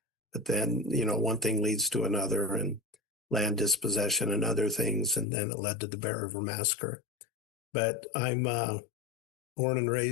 but then, one thing leads to another, and land dispossession and other things. And then it led to the Bear River Massacre. But I'm born and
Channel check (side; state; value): right; drops out; at 5.2 s